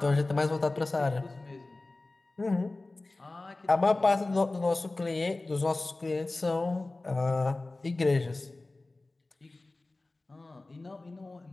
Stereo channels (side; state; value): right; quieter; 3.1 dB